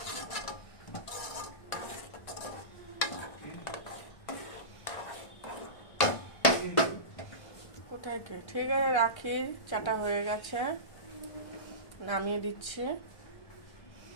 কোথায় কে? ঠিক আছে, রাখি। চাটা হয়ে গেছে, নামিয়ে দিচ্ছি।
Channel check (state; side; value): late; right; 1.4 ms